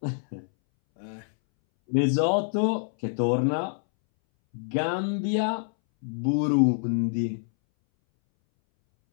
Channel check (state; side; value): silent; right; 61 dB below the other